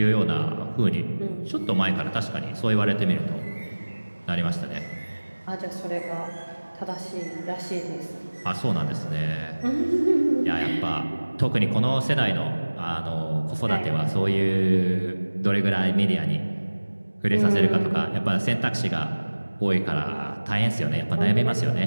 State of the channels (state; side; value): inverted; both; correlation -1.00